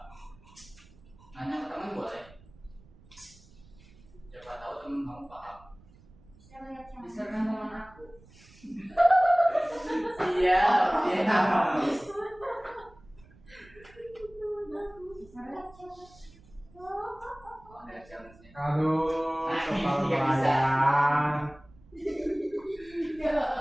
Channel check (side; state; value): right; noise; rumble, 25 dB below the sound